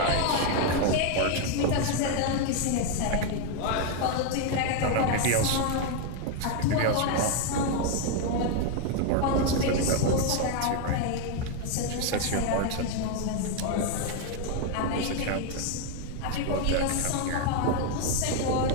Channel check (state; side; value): different; both; correlation 0.01